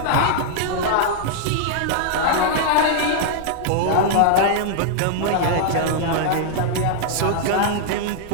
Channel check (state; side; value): different; both; correlation -0.01